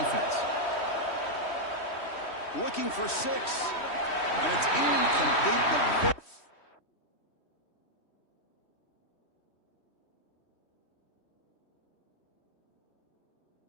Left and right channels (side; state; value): right; late; 3.1 ms